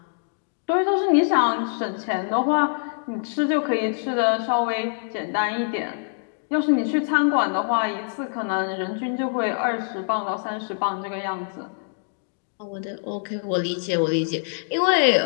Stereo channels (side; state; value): right; silent; digital silence